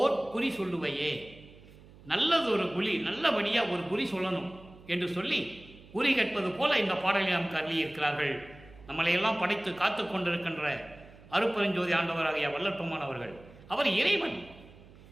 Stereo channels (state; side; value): noise; right; hum, 22 dB below the sound